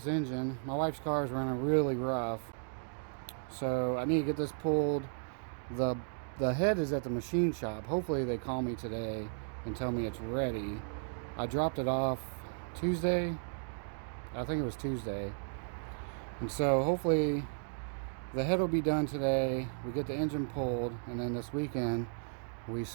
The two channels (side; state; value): left; silent; digital silence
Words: engine. My wife's car is running really rough, so I need to get this pulled. The head is at the machine shop. Hopefully they call me today and tell me it's ready. I dropped it off Tuesday. I think it was Tuesday. And so hopefully the head will be done today. We get the engine pulled, and then this weekend we